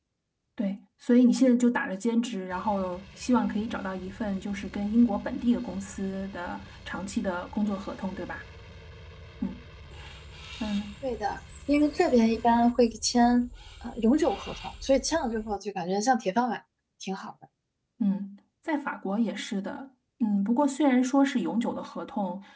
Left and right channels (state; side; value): identical; both; correlation 1.00